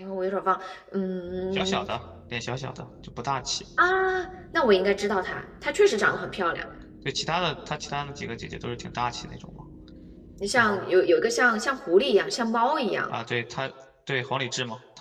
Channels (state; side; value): identical; both; correlation 1.00